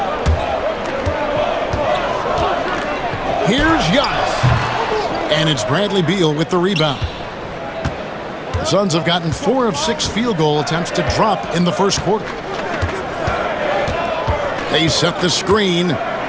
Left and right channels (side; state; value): both; identical; correlation 1.00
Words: Here's Giannis. And it's Bradley Beal with the rebound. The Suns have gotten 4 of 6 field goal attempts to drop in the first quarter. They set the screen